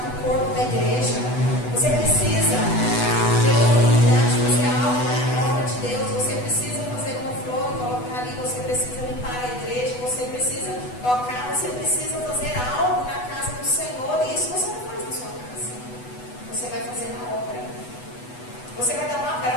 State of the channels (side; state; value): right; late; 8.1 ms